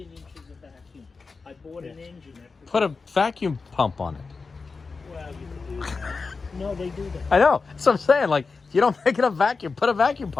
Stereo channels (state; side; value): quieter; right; 4.4 dB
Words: of vacuum. I bought an engine that Put a vacuum pump on it. Well, you can do that. No, they do that. I know. That's what I'm saying. Like, if you don't make enough vacuum, put a vacuum